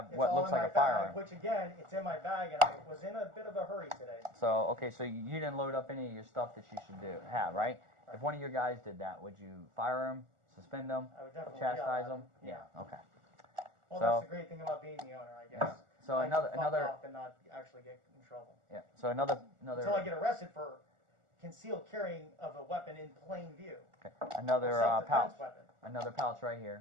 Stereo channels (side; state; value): left; late; 1.4 ms